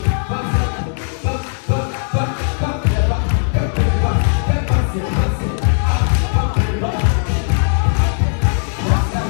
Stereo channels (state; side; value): silent; right; digital silence